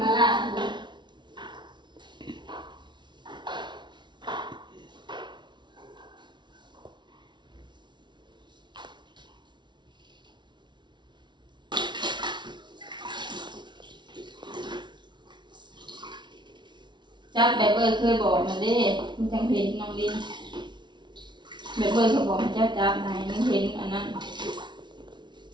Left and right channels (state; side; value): late; left; 0.22 ms